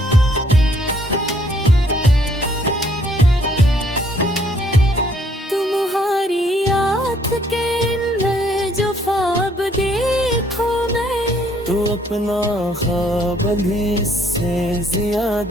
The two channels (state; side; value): normal; both; correlation 0.65